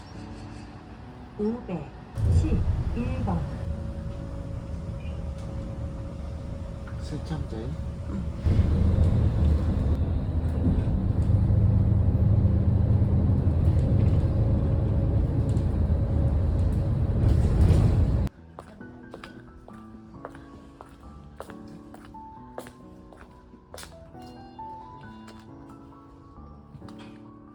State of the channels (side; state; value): both; identical; correlation 1.00